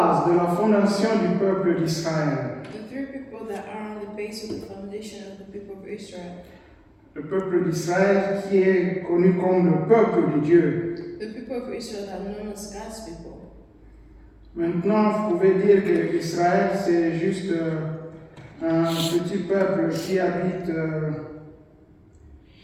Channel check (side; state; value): both; identical; correlation 1.00